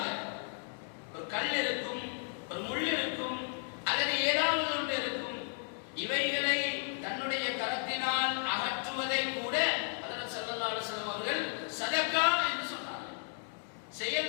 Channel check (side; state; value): right; silent; 55 dB below the other